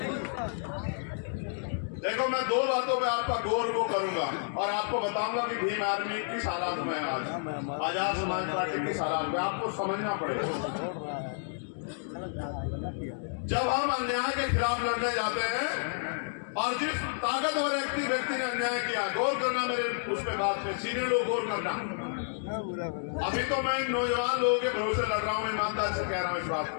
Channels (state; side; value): silent; right; digital silence